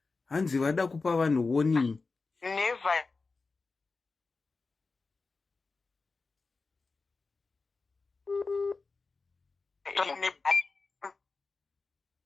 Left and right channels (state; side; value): quieter; right; 4.0 dB